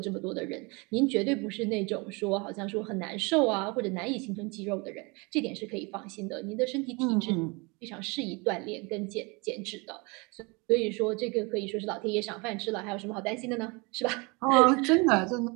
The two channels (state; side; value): quieter; left; 28.5 dB